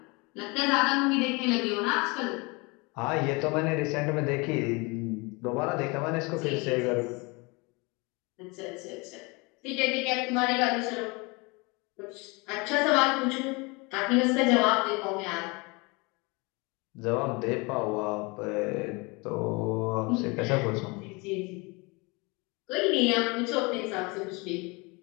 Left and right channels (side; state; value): right; quieter; 27.5 dB